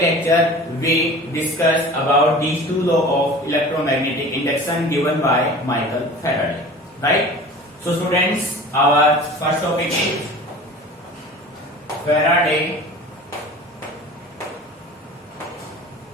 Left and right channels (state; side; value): normal; both; correlation 0.40